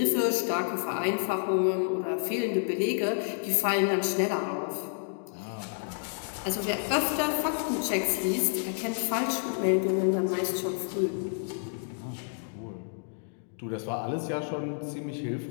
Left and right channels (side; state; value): right; silent; digital silence